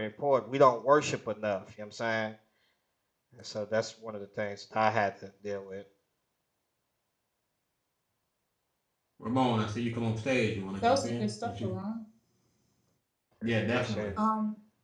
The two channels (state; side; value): identical; both; correlation 1.00